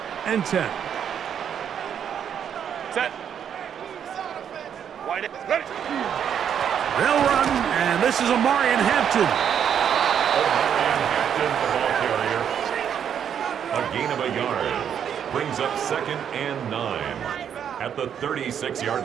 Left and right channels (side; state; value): left; quieter; 8.5 dB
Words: and 10. Set. Wide ready. They'll run, and this is Omarion Hampton. Omarion Hampton, the ball carrier. A gain of a yard. Brings up 2nd and 9 at the